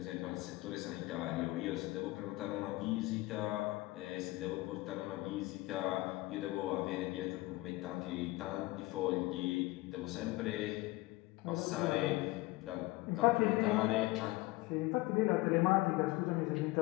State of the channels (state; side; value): quieter; right; 20.4 dB